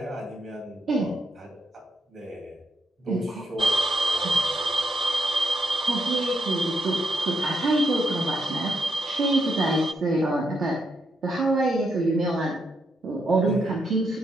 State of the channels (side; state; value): both; normal; correlation 0.80